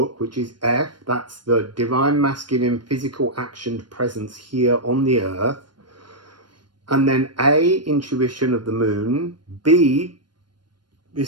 which is F, that's the divine masculine physical action presence here on the earth, and then A, intuition of the moon, B,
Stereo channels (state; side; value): late; left; 0.71 ms